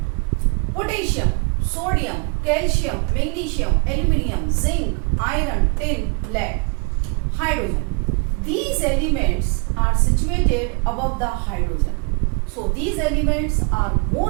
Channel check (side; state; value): left; quieter; 37.1 dB